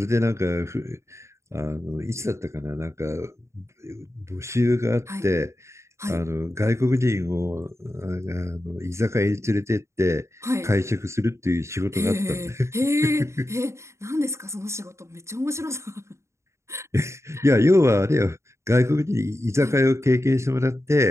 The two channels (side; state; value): left; late; 0.14 ms